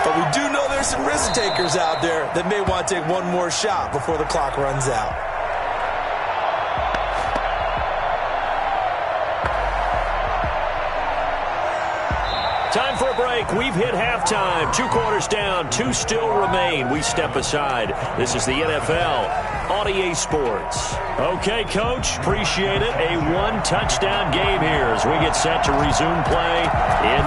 But we do know there's some risk takers out there that may want to take one more shot before the clock runs out. Time for a break. We've hit halftime. 2 quarters down. 2 still remain. We step aside. This is the NFL on EA Sports. Okay, Coach. Appreciate it. A 1-touchdown game here as we get set to resume play in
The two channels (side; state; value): both; identical; correlation 1.00